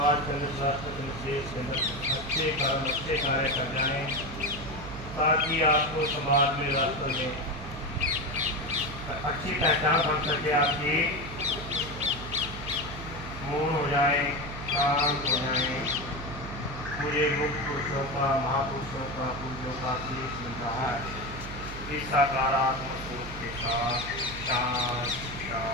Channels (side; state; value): right; noise; hum, 11 dB below the sound